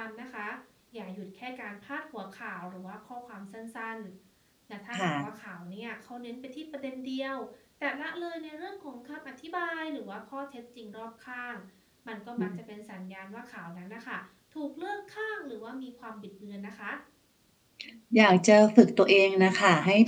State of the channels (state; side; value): identical; both; correlation 1.00